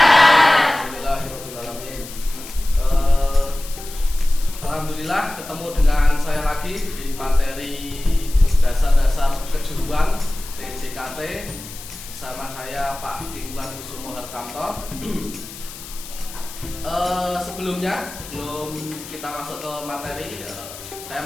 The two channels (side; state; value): left; noise; hiss, 14 dB below the sound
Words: Alhamdulillahirrahmanirrahim. Alhamdulillah ketemu dengan saya lagi di materi dasar-dasar kejuruan TJKT bersama saya Pak Kingwan Kusumo Hartanto. Sebelum kita masuk ke materi,